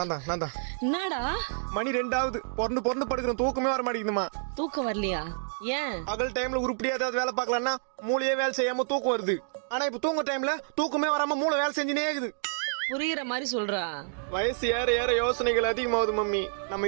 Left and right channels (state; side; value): silent; left; digital silence